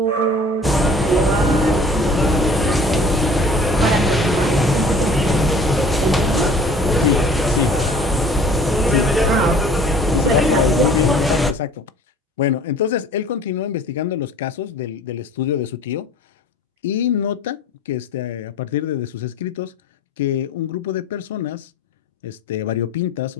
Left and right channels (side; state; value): both; normal; correlation 0.49